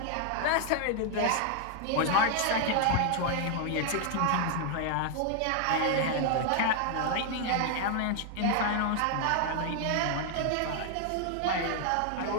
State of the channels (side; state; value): both; different; correlation 0.00